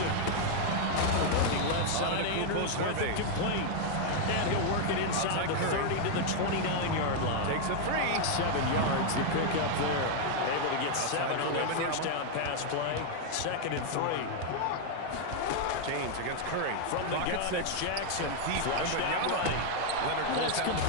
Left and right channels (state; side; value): different; both; correlation 0.00